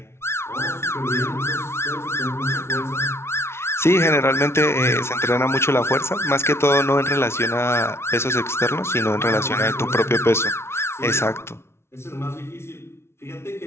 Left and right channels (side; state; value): right; late; 0.12 ms